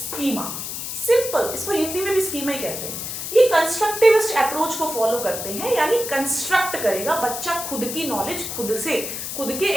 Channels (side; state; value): left; noise; hiss, 6 dB below the sound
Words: सिंपल, इसको हिंदी में भी स्कीमा ही कहते हैं। ये कंस्ट्रक्टिविस्ट अप्रोच को फॉलो करते हैं, यानी कंस्ट्रक्ट करेगा बच्चा खुद की नॉलेज खुद से, खुद के